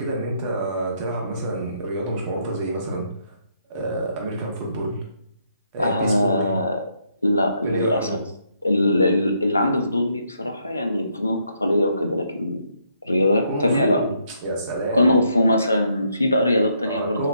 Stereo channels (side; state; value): both; inverted; correlation -0.74